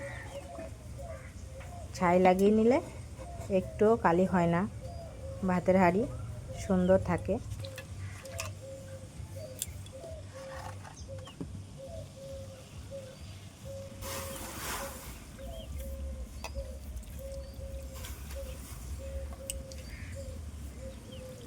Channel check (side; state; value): both; identical; correlation 1.00